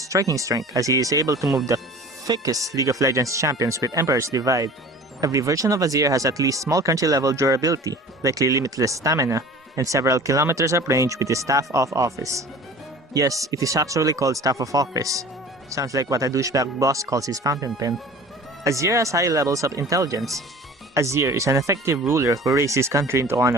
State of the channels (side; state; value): both; normal; correlation 0.43